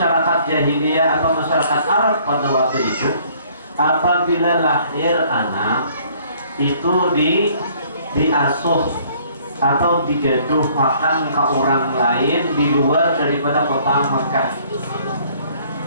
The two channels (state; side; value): inverted; both; correlation -0.59